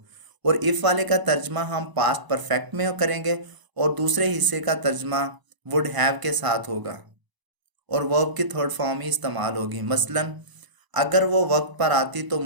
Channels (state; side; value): late; left; 1.0 ms